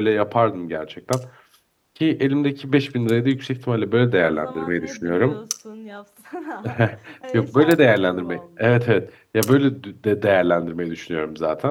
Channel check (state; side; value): identical; both; correlation 1.00